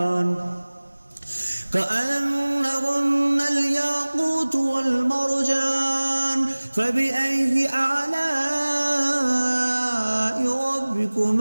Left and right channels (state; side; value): inverted; both; correlation -1.00